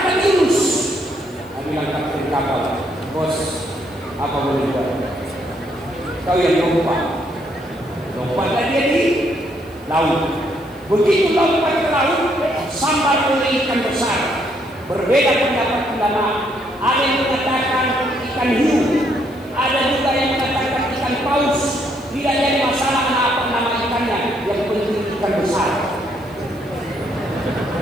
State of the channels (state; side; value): noise; left; hiss, 28 dB below the sound